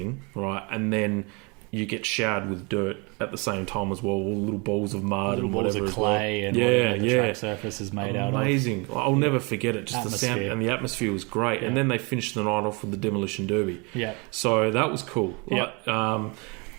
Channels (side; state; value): left; quieter; 30.4 dB